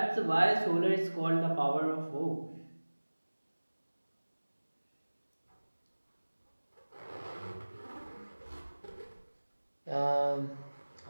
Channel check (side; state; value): both; inverted; correlation -1.00